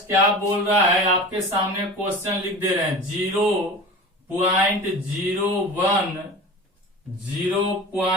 क्या बोल रहा है? आपके सामने क्वेश्चन लिख दे रहे हैं।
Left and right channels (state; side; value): normal; both; correlation 0.34